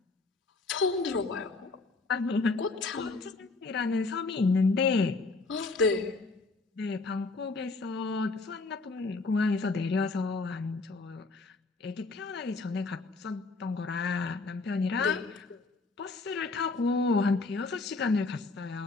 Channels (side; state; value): right; quieter; 3.7 dB